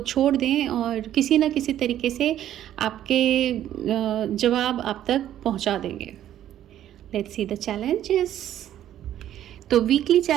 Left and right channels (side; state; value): left; quieter; 11.7 dB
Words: छोड़ दें, और किसी न किसी तरीके से आपके जवाब आप तक पहुंचा देंगे। Let's see the challenges. तो weekly